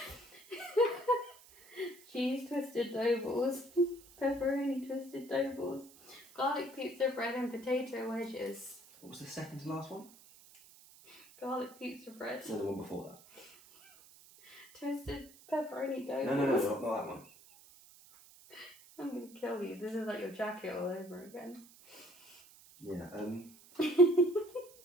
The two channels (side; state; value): right; noise; hiss, 23 dB below the sound